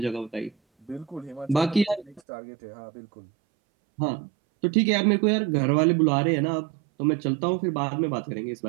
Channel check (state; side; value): drops out; left; at 2.2 s